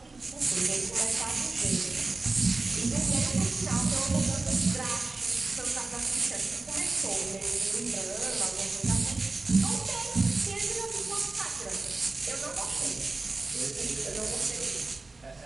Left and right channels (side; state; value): left; quieter; 3.5 dB